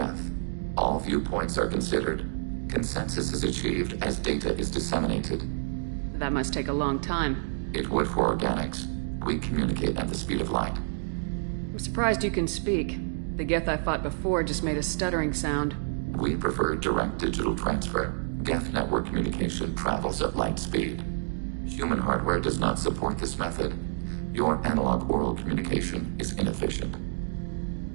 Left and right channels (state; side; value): silent; left; digital silence